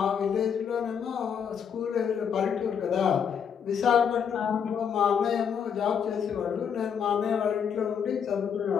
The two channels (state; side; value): quieter; right; 7.5 dB